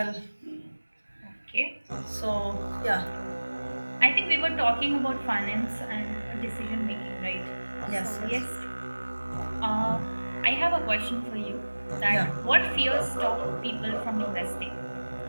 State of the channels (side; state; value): both; inverted; correlation -1.00